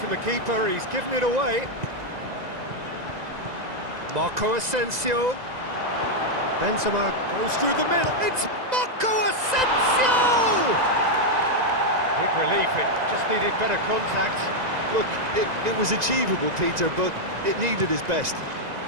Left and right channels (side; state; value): left; late; 1.9 ms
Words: the keeper, he's given it away. Marco Asensio. Benzema goes through the middle, it's Marco Asensio! Big relief, it just needed better contact. Look, it was achievable, Peter, but it needed his best.